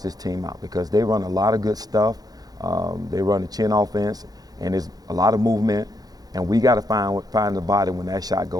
this team out because they run a lot of good stuff. They run the chin offense, and there's a lot of movement, and we got to find the body when that shot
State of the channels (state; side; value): late; left; 0.19 ms